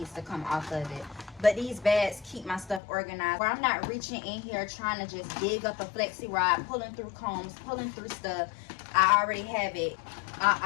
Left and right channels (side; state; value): right; drops out; at 2.8 s